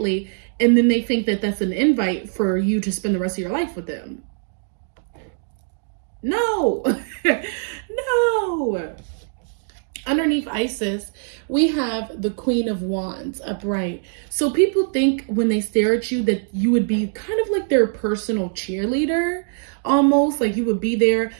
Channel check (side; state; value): left; silent; digital silence